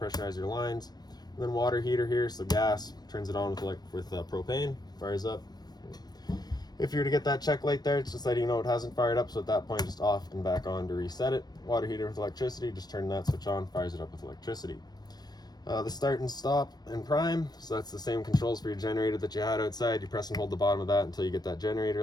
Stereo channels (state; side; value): late; right; 0.19 ms